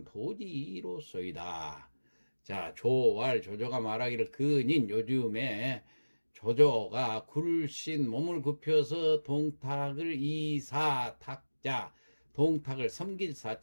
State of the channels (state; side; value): inverted; both; correlation -1.00